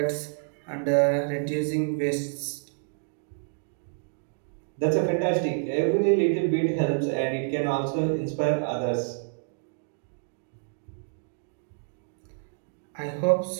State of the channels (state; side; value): silent; left; digital silence